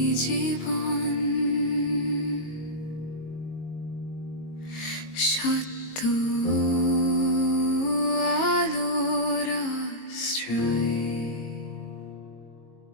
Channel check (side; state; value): right; late; 22 ms